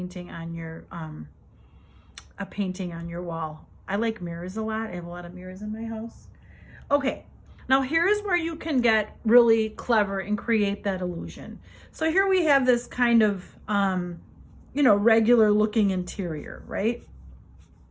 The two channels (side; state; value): both; identical; correlation 1.00